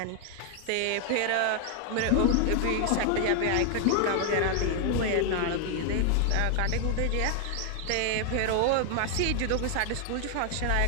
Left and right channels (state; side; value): different; both; correlation 0.00